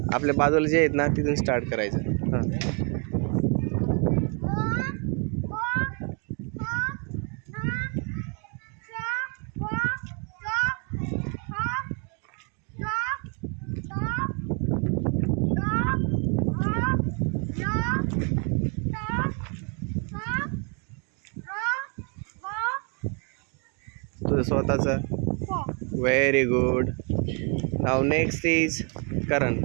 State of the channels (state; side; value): quieter; left; 36.4 dB